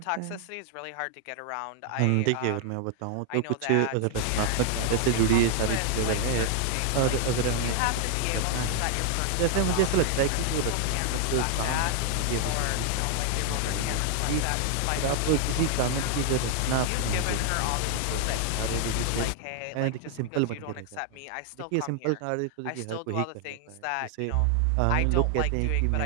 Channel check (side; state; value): both; different; correlation 0.00